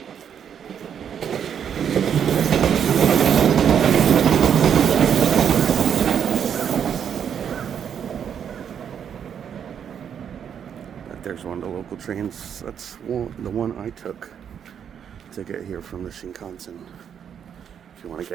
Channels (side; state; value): left; quieter; 8.2 dB